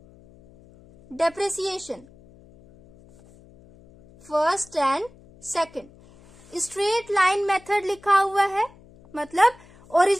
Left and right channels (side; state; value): left; noise; hum, 25 dB below the sound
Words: depreciation first and second. Straight line method लिखा हुआ है, मतलब